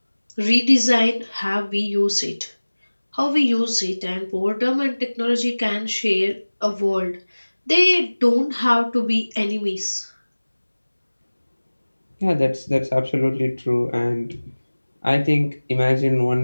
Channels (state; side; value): inverted; both; correlation -1.00